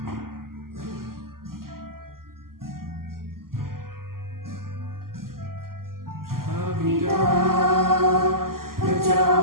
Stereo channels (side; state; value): left; late; 0.92 ms